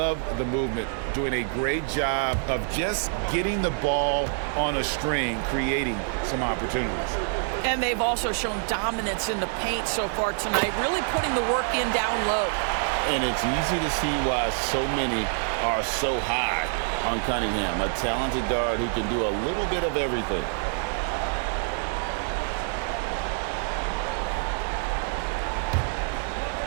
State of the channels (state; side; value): silent; left; 61 dB below the other